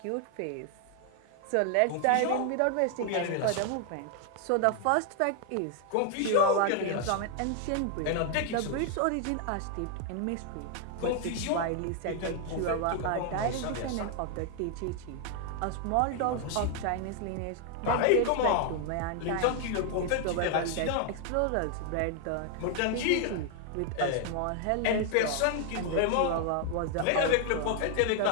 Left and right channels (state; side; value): different; both; correlation 0.00